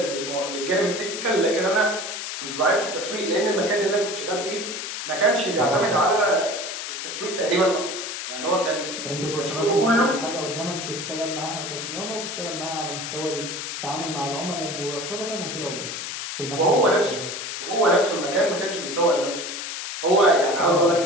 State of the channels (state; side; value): noise; left; hiss, 6 dB below the sound